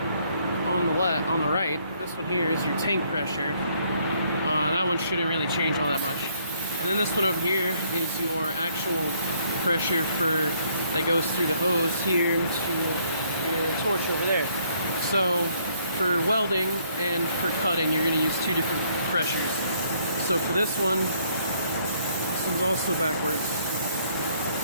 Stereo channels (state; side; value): inverted; both; correlation -0.67